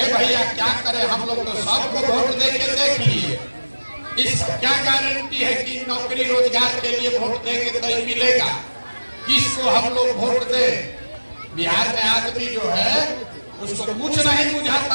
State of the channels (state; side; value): inverted; both; correlation -1.00